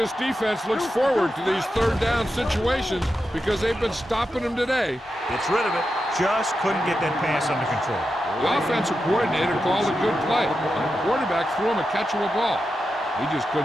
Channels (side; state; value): both; normal; correlation 0.89